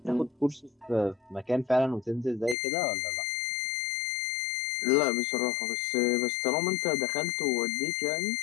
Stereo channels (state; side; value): drops out; right; at 2.6 s